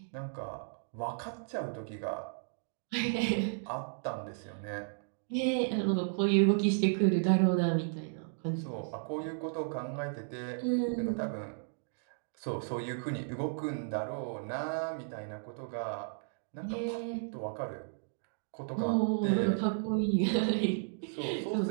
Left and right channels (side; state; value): left; silent; digital silence